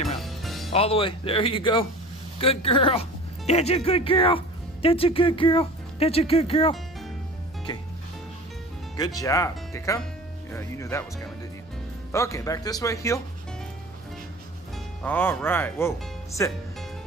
camera out. All the way. There you go. Good girl. That's a good girl. That's a good girl. That's a good girl. Okay. Good job. Okay, come. Yeah, you knew that was coming, didn't you? Okay, back this way. Heel. All right. Whoa. Sit.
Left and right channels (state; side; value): normal; both; correlation 0.40